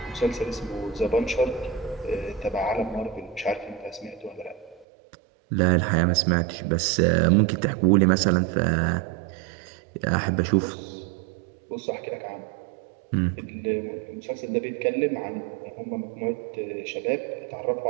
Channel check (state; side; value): drops out; left; at 4.9 s